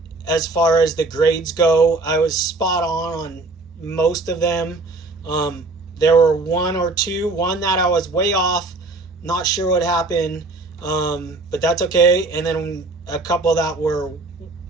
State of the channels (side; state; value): left; quieter; 3.2 dB